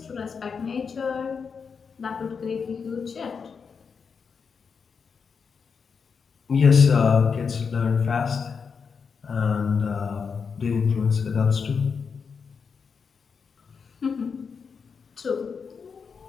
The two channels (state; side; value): quieter; right; 5.8 dB